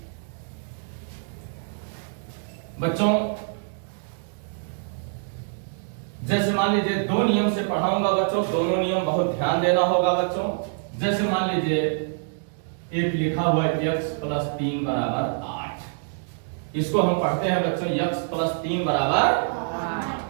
बच्चों, जैसे मान लीजिए दो नियम से पढ़ाऊंगा बच्चों, दोनों नियम बहुत ध्यान देना होगा बच्चों। जैसे मान लीजिए एक लिखा हुआ है x प्लस 3 बराबर 8, इसको हम पढ़ते हैं बच्चों x प्लस 3 बराबर 8।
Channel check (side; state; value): left; silent; digital silence